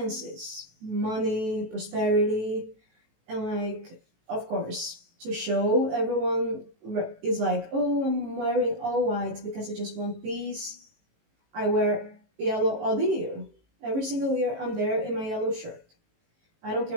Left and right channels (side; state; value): left; late; 18 ms